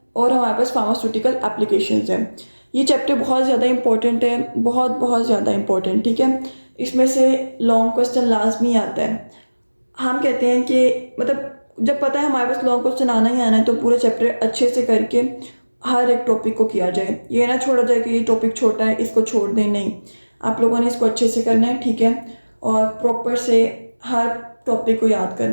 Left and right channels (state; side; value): inverted; both; correlation -1.00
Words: और हमारे पास फार्मास्यूटिकल एप्लीकेशंस हैं। ये चैप्टर बहुत ज़्यादा इंपॉर्टेंट है, बहुत ज़्यादा इंपॉर्टेंट। ठीक है, इसमें से लॉन्ग क्वेश्चन लाजमी आता है। हम कहते हैं कि मतलब जब पता है हमारे पास लॉन्ग क्वेश्चन आना ही आना है तो पूरा चैप्टर अच्छे से करके हर एक टॉपिक को किया जाए। ये ना छोड़ा जाए कि ये टॉपिक छोटा है इसको छोड़ दें, नहीं, आप लोगों ने इसको अच्छे से करना है। ठीक है, और प्रॉपर से हर टॉपिक को याद